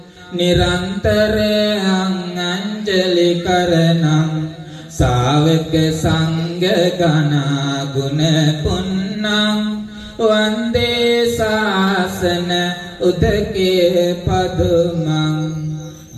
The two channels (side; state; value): both; identical; correlation 1.00